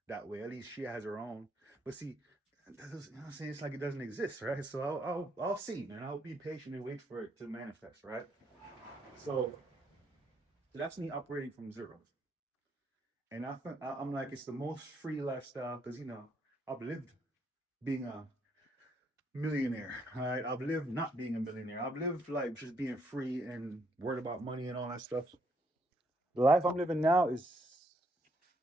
that way. At least she has her own. But see, you know what I'm saying? It's like it doesn't exist, right? So I'll see, man. I'll be patient and wait for it to manifest, right? So that's me operating from zero. And I think I'm like it's the most free lifestyle because I've lived being a millionaire. All right, I've lived not being a millionaire. I've lived like just being free and worried about money and all that stuff. The life I'm living now is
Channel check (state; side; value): normal; both; correlation 0.73